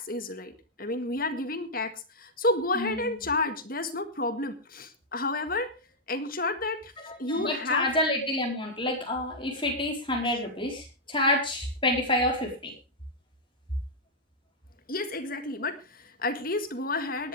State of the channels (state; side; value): normal; both; correlation -0.05